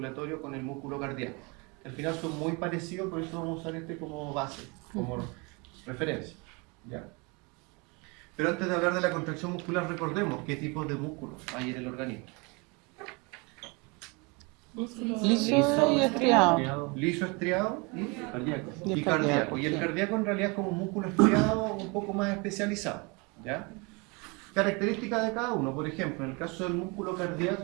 con el músculo cardíaco. Al final son muy parecidos, por eso vamos a usar este como base, como referencia. ¿Ya? Pero antes de hablar de la contracción muscular, recordemos qué tipos de músculos hay en el organismo. Liso y estriado. Liso, estriado y Y cardíaco. Y el sí. cardíaco en realidad es como un músculo estriado un poco más especializado. ¿Ya? Características de cada uno. Por ejemplo, en el caso del músculo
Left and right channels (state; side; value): quieter; left; 28.5 dB